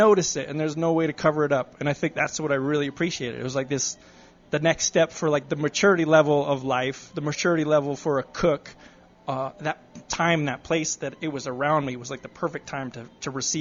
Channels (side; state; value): both; identical; correlation 1.00